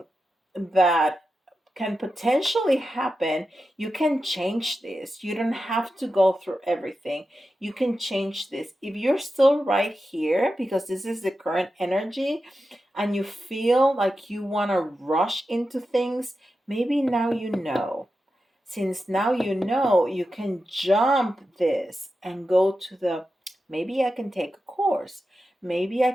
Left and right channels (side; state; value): both; normal; correlation 0.91